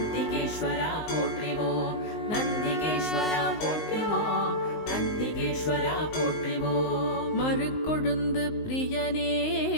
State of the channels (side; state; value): right; late; 19 ms